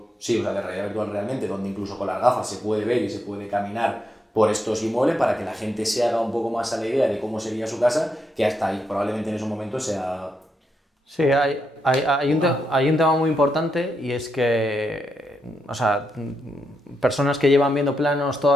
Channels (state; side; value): normal; both; correlation 0.82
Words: de realidad virtual realmente, donde incluso con las gafas se puede ver y se puede caminar por estos inmuebles para que la gente se haga un poco más a la idea de cómo sería su casa, que hasta ahí probablemente en esos momentos sea... Sí, hay un tema muy importante y es que, o sea, personas que llevan viendo planos